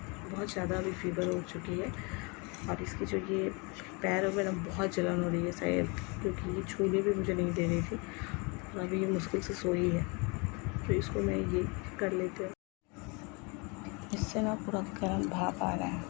ज़्यादा अभी फीवर हो चुकी है और इसकी जो ये पैरों में ना बहुत जलन हो रही है शायद, क्योंकि ये छूने भी मुझे नहीं दे रही थी। और अभी ये मुश्किल से सोई है, तो इसको मैं ये कर लेती हूँ। इससे ना पूरा गर्म भाप आ रहा है।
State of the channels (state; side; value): quieter; right; 30.3 dB